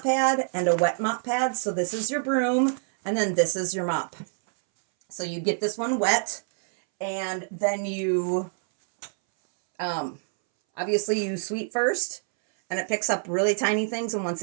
pad and a wet mop pad. So this is your broom, and then this is your mop. So you get this one wet, and then you obviously you sweep first, and it picks up really tiny things, and once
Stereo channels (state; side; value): silent; left; 61 dB below the other